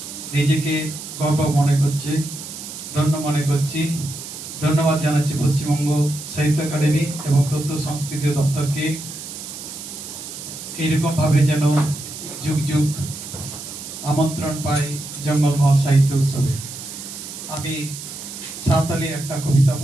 নিজেকে গর্ব মনে করছি, ধন্য মনে করছি। ধন্যবাদ জানাচ্ছি পশ্চিমবঙ্গ সাহিত্য একাডেমি এবং তথ্য সংস্কৃতি দপ্তরকে। এইরকমভাবে যেন যুগ যুগ আমন্ত্রণ পাই জঙ্গলমহল সাহিত্য উৎসবে। আমি সাঁওতালি একটা কবিতা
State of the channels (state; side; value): noise; right; hiss, 10 dB below the sound